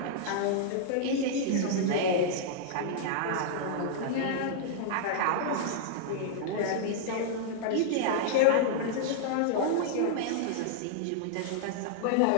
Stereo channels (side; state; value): both; different; correlation -0.01